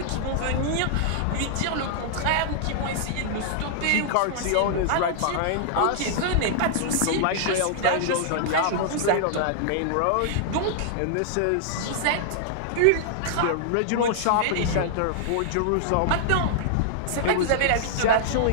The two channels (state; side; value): different; both; correlation -0.01